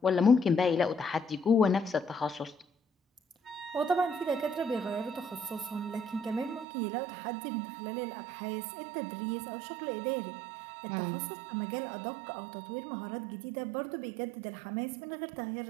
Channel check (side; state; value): left; drops out; at 6.7 s